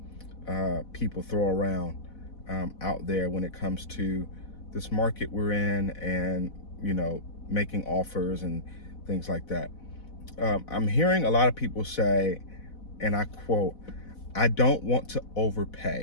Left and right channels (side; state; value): right; late; 4.1 ms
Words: people throw around out there when it comes to this market we're in and, making offers and things like that. I'm hearing a lot of people say, and I quote, "I don't want to